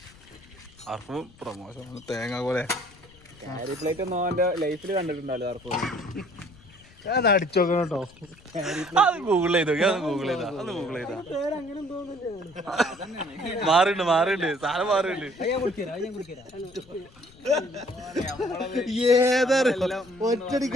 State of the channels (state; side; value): noise; left; rumble, 25 dB below the sound